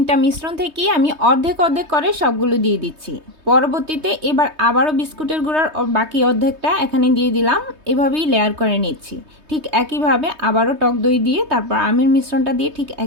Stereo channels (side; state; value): left; late; 3.2 ms